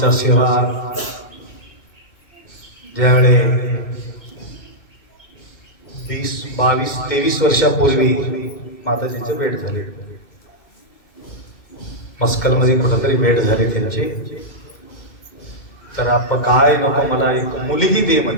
सेवा ज्यावेळे 22-23 वर्षापूर्वी माताजीचे भेट झाले. मस्कलमध्ये कुठंतरी भेट झाली त्यांची. तर आपण काय नको, मला एक मुलगी दे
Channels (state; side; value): late; right; 2.1 ms